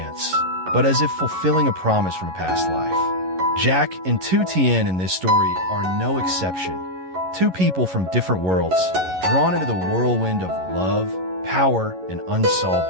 but as if fulfilling a promise from a past life. Jack and Tien in this story are no exception. Two people from different worlds, drawn into the whirlwind of love, power, and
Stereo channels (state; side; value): late; left; 11 ms